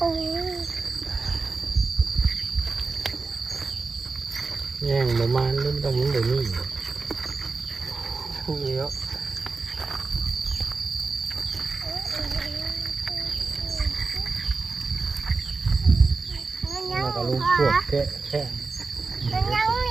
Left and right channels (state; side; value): quieter; left; 4.1 dB